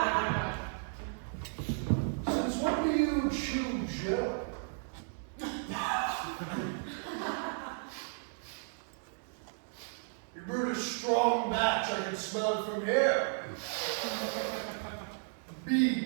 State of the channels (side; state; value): left; silent; digital silence